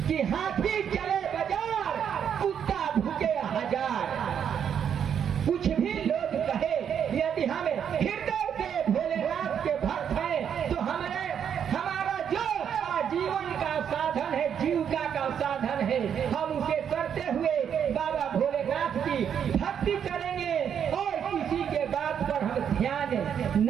कि हाथी चले बाजार, कुत्ता भूखे हजार। कुछ भी लोग कहे, यदि हमें हृदय से भोलेनाथ के भक्त हैं तो हमारा जो आजीवन का साधन है, जीविका का साधन है, हम उसे करते हुए बाबा भोलेनाथ की भक्ति करेंगे और किसी के बात पर हम ध्यान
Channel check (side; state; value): left; quieter; 8.3 dB